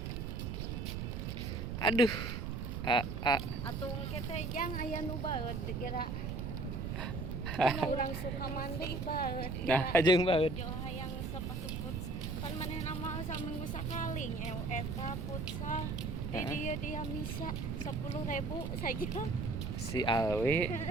Aduh. Atuh engke teh jang aya nu baeud kira. Urang suka mandi baeud. Nah, jeung banget. Jo hayang sepatu futsal. Pan manehna mah saminggu sakali nyew eta futsal. Di dieu dia misa 10.000 saja. Si Alwi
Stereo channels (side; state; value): right; noise; rumble, 4 dB below the sound